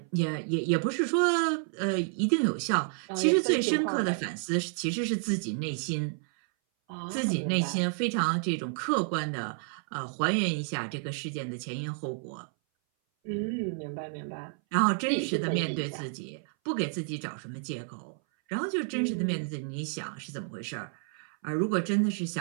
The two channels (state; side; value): silent; left; 58 dB below the other